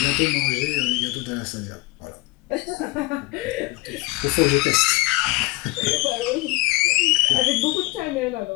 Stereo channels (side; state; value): right; quieter; 20.7 dB